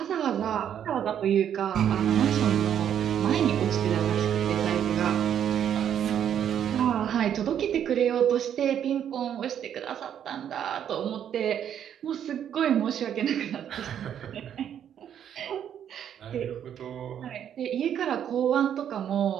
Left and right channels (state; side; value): quieter; left; 9.4 dB